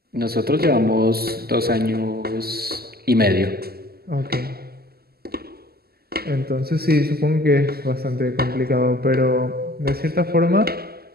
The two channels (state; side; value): late; left; 0.45 ms